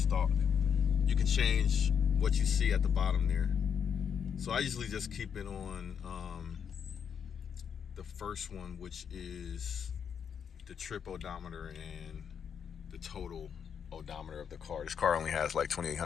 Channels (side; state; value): right; quieter; 7.5 dB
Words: You can change what you see at the bottom there. So I usually just keep it on the first one, which is the trip odometer and the total odometer of the car. This car only has